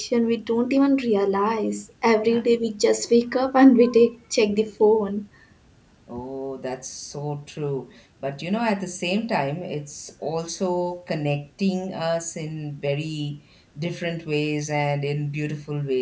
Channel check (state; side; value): identical; both; correlation 1.00